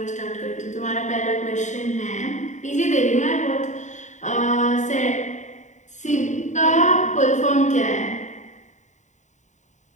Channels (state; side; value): late; right; 0.35 ms